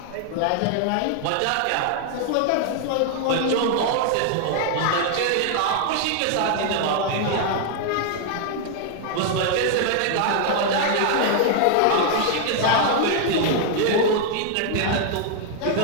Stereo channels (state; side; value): different; both; correlation 0.00